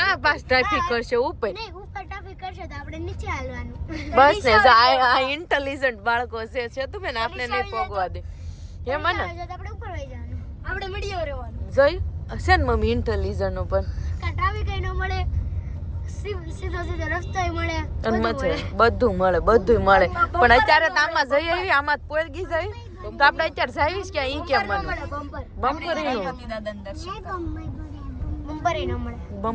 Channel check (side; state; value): both; identical; correlation 1.00